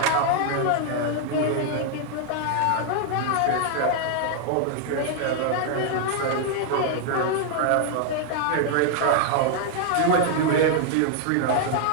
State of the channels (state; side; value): different; both; correlation 0.00